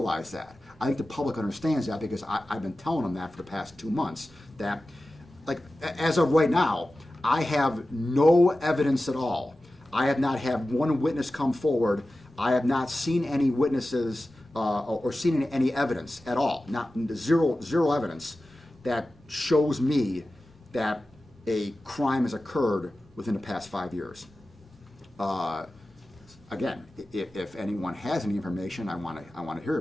that. I think the public understands that, because I've been telling them that for the past 2 months, that, like, as of right now, I have no evidence at all. I have not had one witness come forward. I have not seen any witnesses or seen any evidence at all. Not zero evidence that shows me that a crime has occurred within the past 5 years. Again, if anyone has any information, I want to hear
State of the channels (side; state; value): both; normal; correlation 0.95